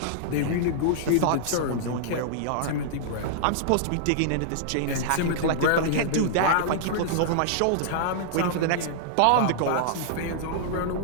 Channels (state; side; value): different; both; correlation -0.01